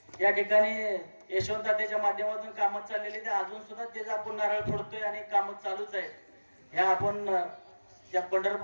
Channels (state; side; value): inverted; both; correlation -1.00